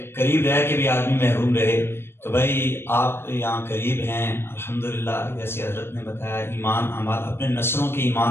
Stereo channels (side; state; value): right; late; 0.12 ms